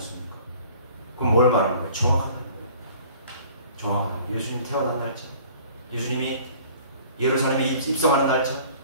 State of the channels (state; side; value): inverted; both; correlation -0.50